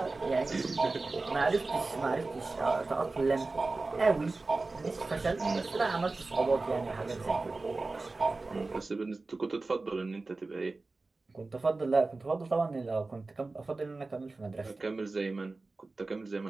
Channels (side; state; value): left; quieter; 3.5 dB